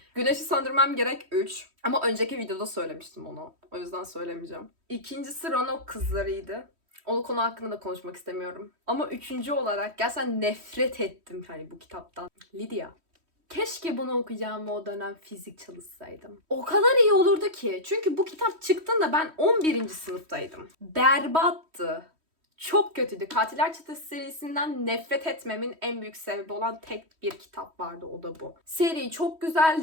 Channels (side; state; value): left; late; 3.1 ms